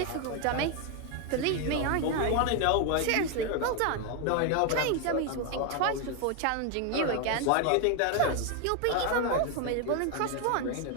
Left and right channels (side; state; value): both; different; correlation 0.01